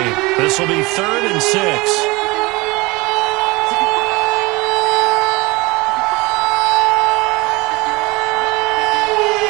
This will be 3rd and 6.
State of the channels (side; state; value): left; quieter; 23.8 dB